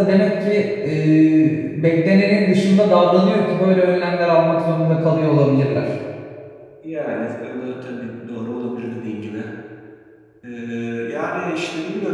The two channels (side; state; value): both; identical; correlation 1.00